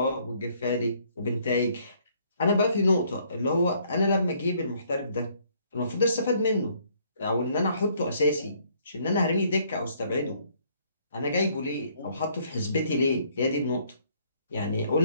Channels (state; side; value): inverted; both; correlation -0.65